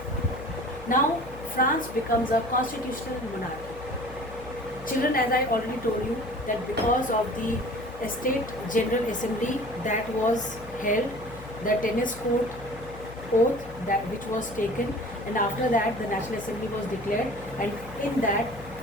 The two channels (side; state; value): left; noise; hum, 15 dB below the sound